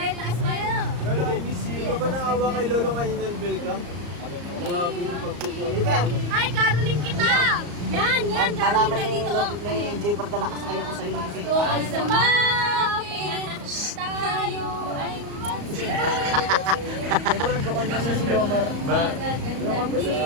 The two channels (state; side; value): late; left; 34 ms